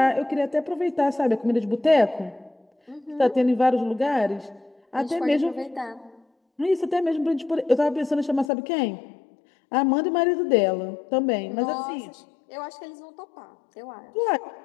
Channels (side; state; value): right; drops out; at 8.5 s